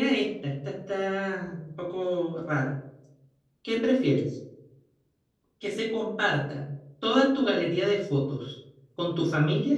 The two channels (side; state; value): both; identical; correlation 1.00